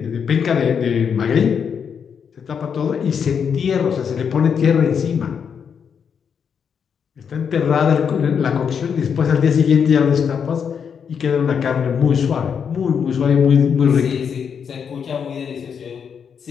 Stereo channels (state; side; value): quieter; right; 7.0 dB